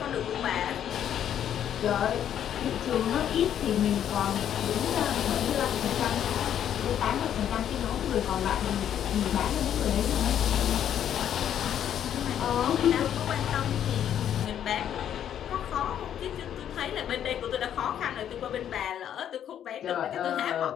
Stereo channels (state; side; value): quieter; right; 9.9 dB